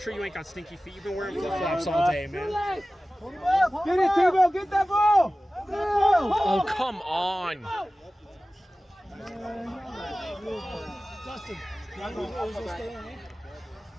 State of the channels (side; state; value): both; normal; correlation 0.96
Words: you ain't got stinky feet. You've been wearing flip-flops all day, man. Get it, T-Ball! Get that ball! Oh, come on. Dustin, stay on, eh?